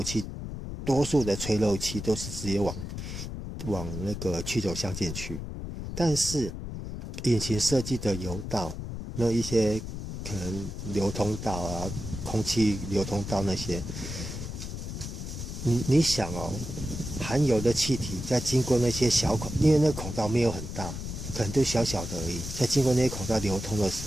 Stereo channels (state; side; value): noise; left; rumble, 7 dB below the sound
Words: 气，多数的吹漏气都是直接往那个曲轴箱进去。但是引擎设计的油道，那一些可能流通道啊、空气流通道那些，你想哦，含油的气体在经过那些小孔，因为那个孔道没有很大，可能就小小的而已，在经过那些孔道流通的时